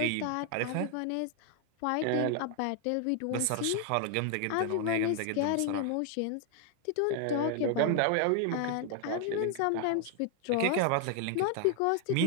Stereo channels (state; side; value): different; both; correlation 0.00